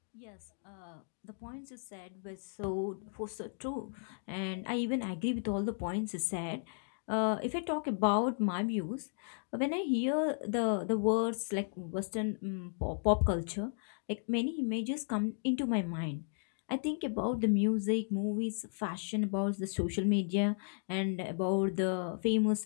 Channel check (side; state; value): right; silent; digital silence